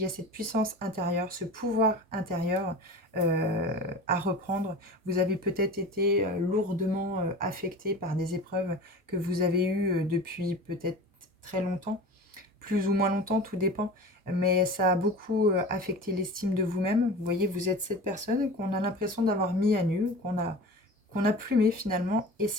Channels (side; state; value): both; normal; correlation 0.35